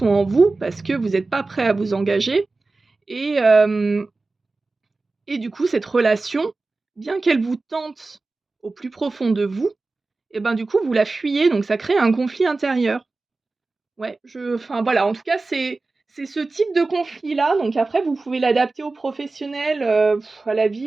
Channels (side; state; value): left; quieter; 3.5 dB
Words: en vous parce que vous êtes pas prêt à vous engager et et du coup, cette relation, bien qu'elle vous tente au plus profond de vous et ben, du coup, vous la fuyez, donc ça crée un conflit intérieur. Ouais, enfin voilà, en tout cas, c'est ce type de conflit-là, donc après vous pouvez l'adapter aux professionnels, à la